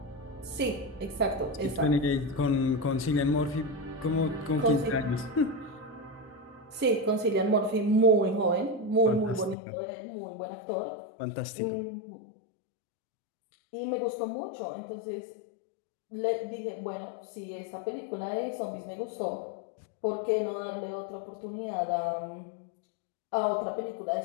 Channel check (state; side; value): drops out; right; at 9.6 s